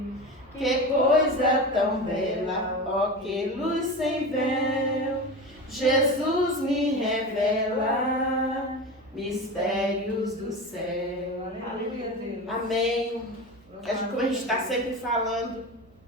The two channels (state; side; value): noise; right; hum, 28 dB below the sound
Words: Que coisa tão bela, ó que luz sem véu, Jesus me revela mistérios do céu. Aleluia, Deus. Amém. Como a gente está sempre falando,